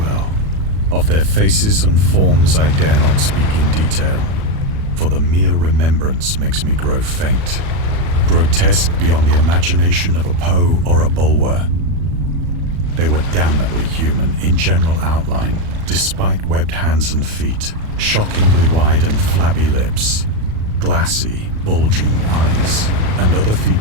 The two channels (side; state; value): left; late; 37 ms